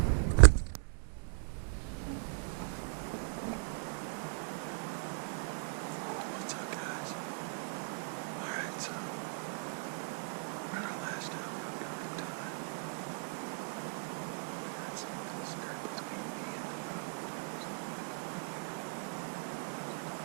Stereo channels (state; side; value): silent; left; 53 dB below the other